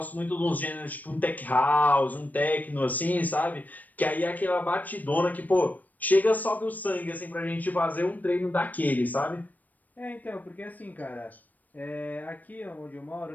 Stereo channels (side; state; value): right; late; 0.081 ms